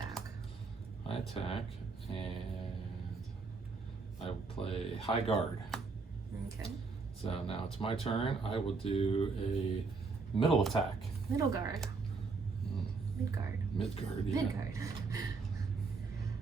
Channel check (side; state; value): left; quieter; 4.4 dB